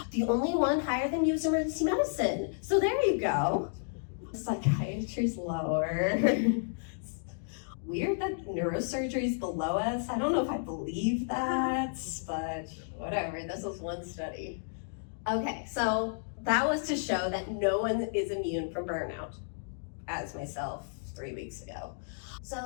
The only one higher than you is emergency medicine. So there you go. Psychiatry's lower. Weird that neurosurgery is below us. I don't know if I believe that, but whatever. This was one study. Okay, so that was to show that no one is immune from burnout, as myself 3 weeks ago.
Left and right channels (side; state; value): right; silent; digital silence